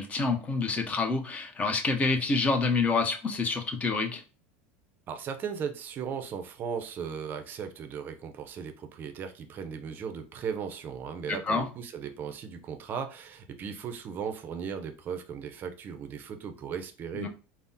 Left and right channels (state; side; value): normal; both; correlation 0.50